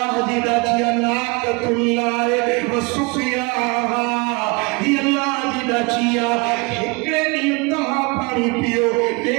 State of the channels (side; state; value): left; quieter; 28.2 dB